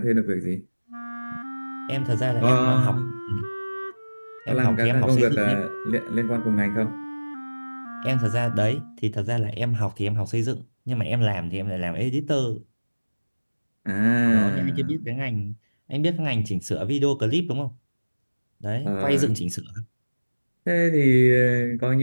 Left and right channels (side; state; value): both; inverted; correlation -1.00